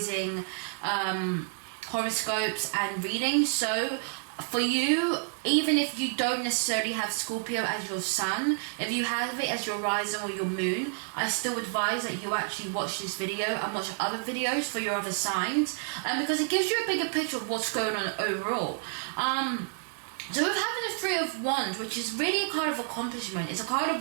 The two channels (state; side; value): silent; left; 58 dB below the other